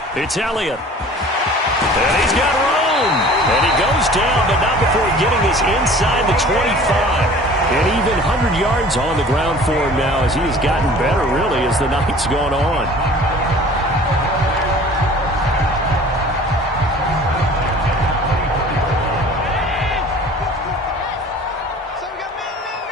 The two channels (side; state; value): both; normal; correlation 0.46